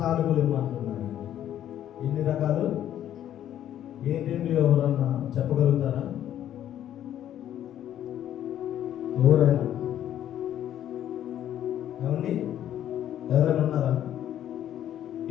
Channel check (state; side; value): quieter; right; 11.2 dB